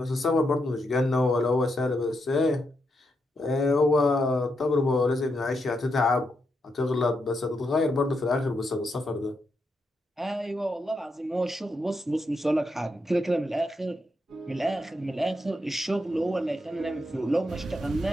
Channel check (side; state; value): both; normal; correlation 0.82